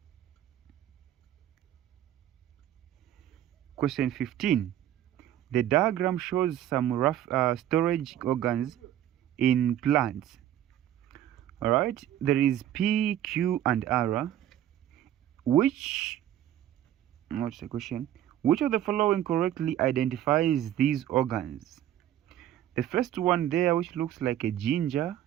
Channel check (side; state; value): left; quieter; 11.8 dB